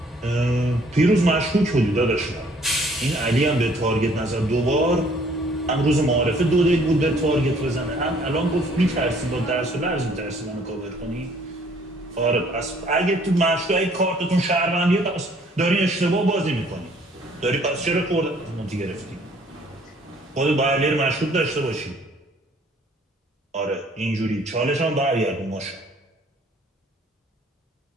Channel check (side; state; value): both; normal; correlation 0.60